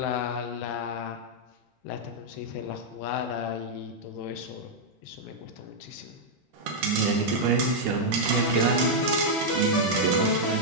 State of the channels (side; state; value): both; normal; correlation -0.04